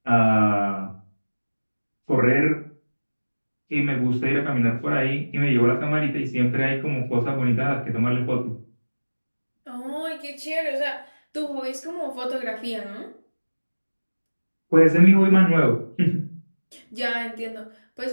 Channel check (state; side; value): inverted; both; correlation -1.00